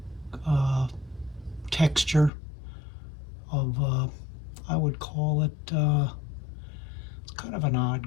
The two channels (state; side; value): drops out; right; at 2.3 s